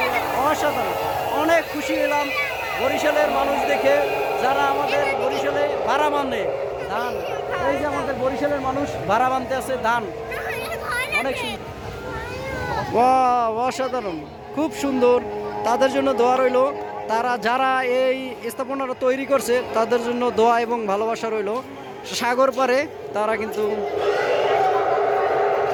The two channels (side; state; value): both; identical; correlation 1.00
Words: যে অসাধারণ, অনেক খুশি হলাম বরিশালের মানুষ দেখে, যারা আমাদের বরিশালে ভাড়া মানে ধান। এই যে আমাদের বরিশালের মানুষ ভাড়া বানতে আছে ধান, অনেক সুন্দর। বাহ, অসাধারণ, খুব সুন্দর। তাদের জন্য দোয়া রইল, তারা যারা এই স্থাপনাটা তৈরি করছে তাদের জন্য দোয়া এবং ভালোবাসা রইল। সাগর পারে তারা কিন্তু